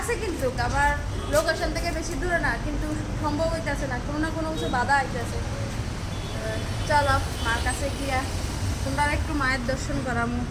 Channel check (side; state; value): both; identical; correlation 1.00